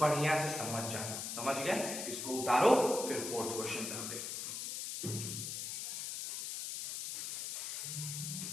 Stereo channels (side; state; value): left; noise; hiss, 4 dB below the sound